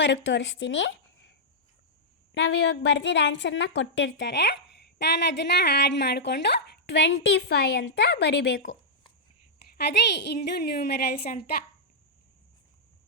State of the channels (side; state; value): both; normal; correlation -0.09